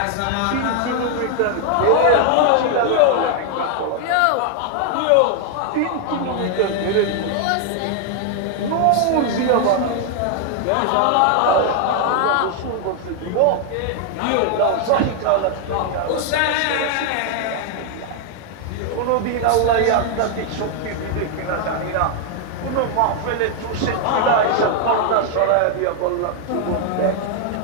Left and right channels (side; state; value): both; different; correlation 0.00